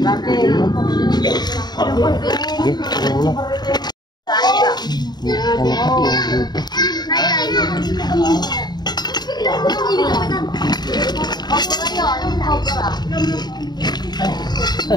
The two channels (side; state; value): right; late; 0.20 ms